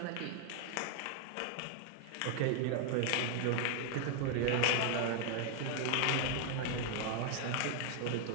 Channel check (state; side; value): different; both; correlation 0.00